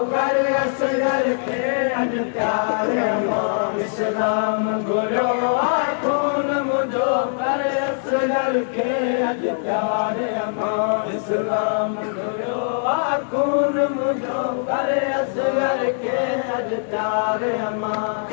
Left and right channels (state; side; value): silent; right; digital silence